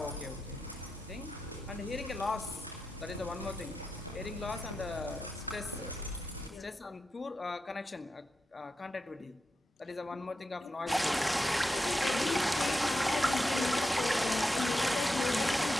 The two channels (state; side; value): normal; both; correlation 0.88